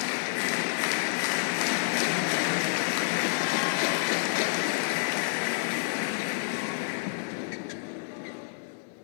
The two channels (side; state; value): right; silent; digital silence